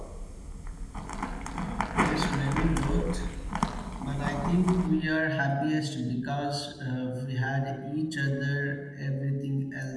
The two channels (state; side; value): identical; both; correlation 1.00